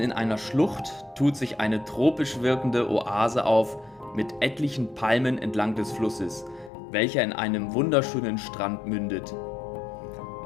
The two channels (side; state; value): right; drops out; at 6.7 s